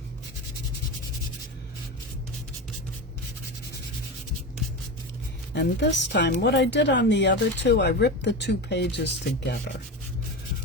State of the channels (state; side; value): normal; both; correlation 0.23